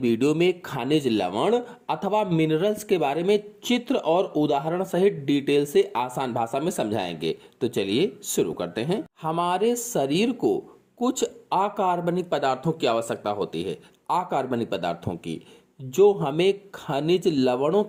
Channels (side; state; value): both; identical; correlation 1.00